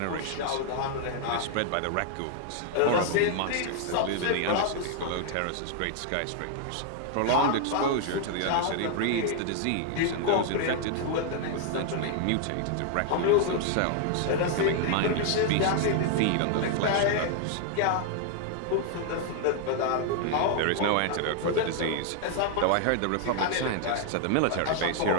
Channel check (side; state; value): both; different; correlation 0.00